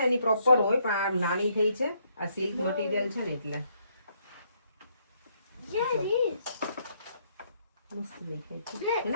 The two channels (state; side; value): inverted; both; correlation -0.72